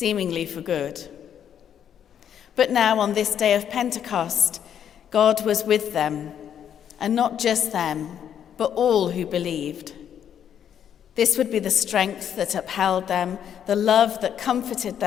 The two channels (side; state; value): right; quieter; 9.1 dB